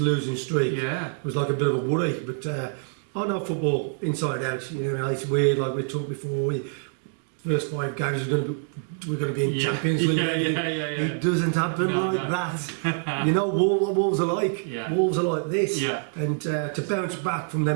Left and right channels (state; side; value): silent; left; 61 dB below the other